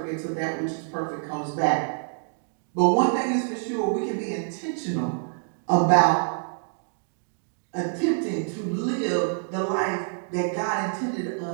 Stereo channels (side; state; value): left; silent; digital silence